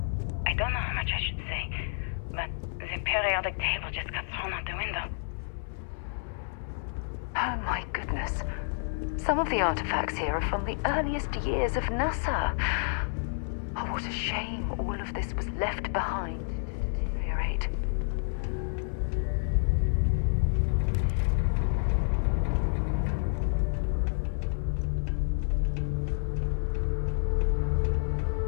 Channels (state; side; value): silent; right; 58 dB below the other